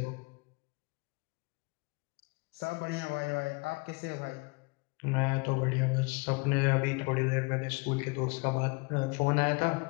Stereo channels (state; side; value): quieter; right; 28.8 dB